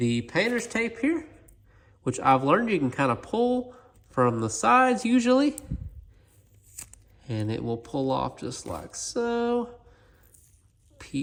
painter's tape here, which I've learned you can kind of pull from the sides usually, and it will pull off just like so.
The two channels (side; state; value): both; identical; correlation 1.00